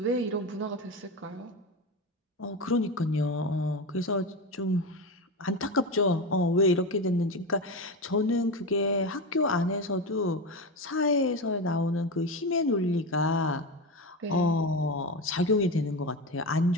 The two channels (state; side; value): normal; both; correlation 0.19